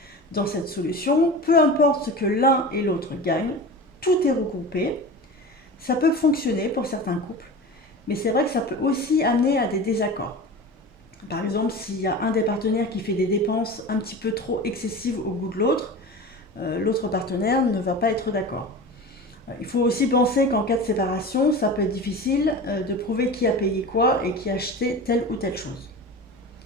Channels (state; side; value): normal; both; correlation 0.32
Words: Dans cette solution, peu importe ce que l'un et l'autre gagnent, tout est regroupé. Ça peut fonctionner pour certains couples, mais c'est vrai que ça peut aussi amener à des désaccords. Par exemple, s'il y a un des partenaires qui fait des dépenses un petit peu trop excessives au goût de l'autre, l'autre partenaire ne va pas être d'accord. Il faut aussi penser qu'en cas de séparation, ça peut être difficile de prouver qui a payé quoi et qui a acheté telle ou telle chose.